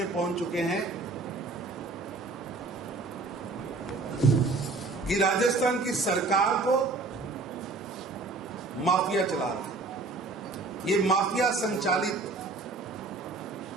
पहुंच चुके हैं कि राजस्थान की सरकार को माफिया चला रहा है। ये माफिया संचालित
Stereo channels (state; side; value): quieter; left; 3.6 dB